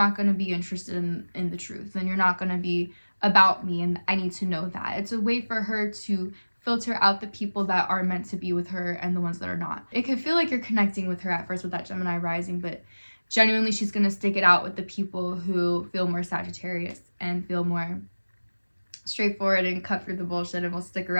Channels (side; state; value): both; inverted; correlation -1.00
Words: going to be interested in the truth. Then you're not going to be about me, and I need to know that. It's a way for her to filter out the people that are meant to be with her and the ones that are not. It could feel like you're connecting with her at first with that Gemini rising, but genuinely she's going to stick it out with the people who feel more Sagittarius and feel more straightforward and cut through the bullshit and will stick